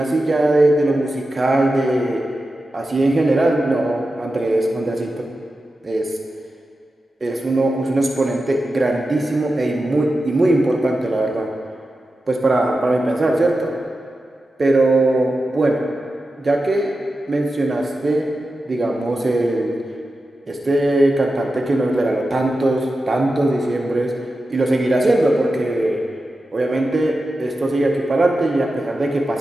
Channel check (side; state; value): both; normal; correlation 0.91